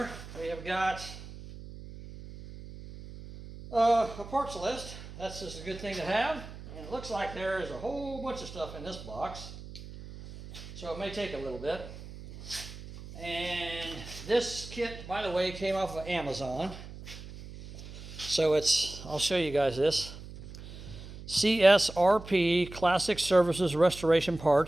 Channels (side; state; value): right; noise; hum, 14 dB below the sound